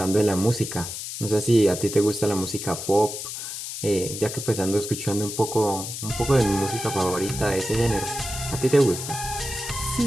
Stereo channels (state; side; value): noise; left; hiss, 7 dB below the sound